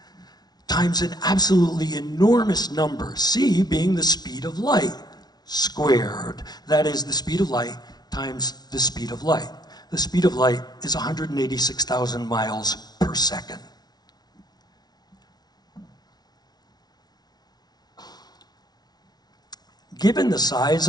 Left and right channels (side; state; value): right; late; 0.19 ms